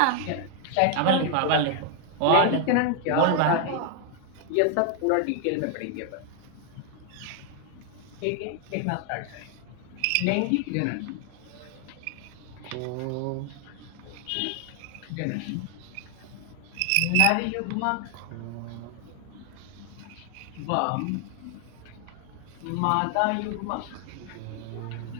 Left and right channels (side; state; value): both; different; correlation 0.00